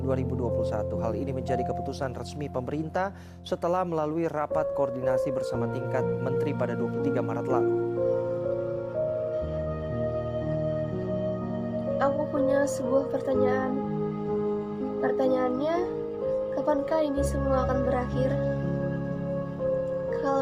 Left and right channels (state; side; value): identical; both; correlation 1.00